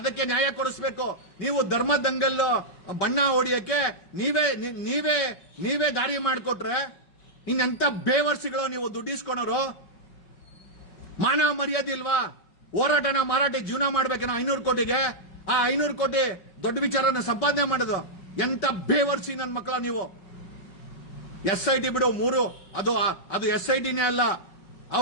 ನ್ಯಾಯ ಕೊಡಿಸಬೇಕು. ನೀವು ಧರ್ಮ ದಂಗಲ್ಲು ಬಣ್ಣ ಹೊಡಿಯಕ್ಕೆ ನೀವೇ ದಾರಿ ಮಾಡಿಕೊಟ್ರೆ ಇನ್ನೆಂತ ಬೇವರ್ಸಿಗಳು ನೀವು ದುಡ್ಡಿಸ್ಕೊಳೋರು. ಮಾನ ಮರ್ಯಾದೆ ಇಲ್ವಾ? ಹೋರಾಟನ ಮಾರಾಟ ಜೀವನ ಮಾಡ್ಬೇಕೇನೋ 500 ಕೋಟಿಗೆ. ಆ 500 ಕೋಟಿ ದೊಡ್ಡ ವಿಚಾರನ ಸಂಪಾದನೆ ಮಾಡೋದು ಎಂತ ಬೇವರ್ಸಿ ನನ್ನ ಮಕ್ಕಳ ನೀವು. SIT ಬಿಡು, 3 ಅದು SITನೇ ಅಲ್ಲ.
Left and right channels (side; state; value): right; late; 5.4 ms